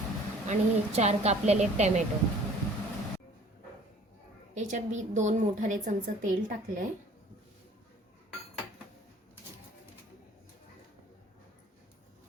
आणि 4 कापलेले टोमॅटो. याच्यात मी 2 मोठाले चमचे तेल टाकले.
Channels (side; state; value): both; normal; correlation 0.52